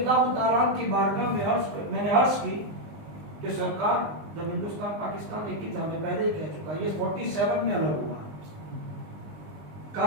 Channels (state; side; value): late; left; 20 ms